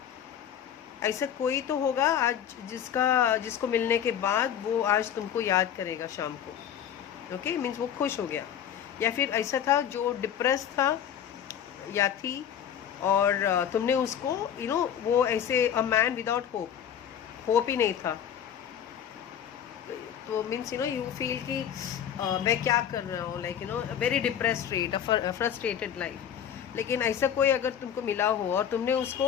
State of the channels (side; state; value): right; quieter; 9.3 dB